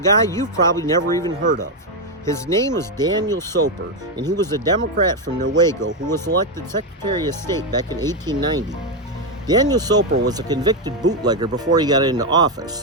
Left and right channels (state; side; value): normal; both; correlation 0.05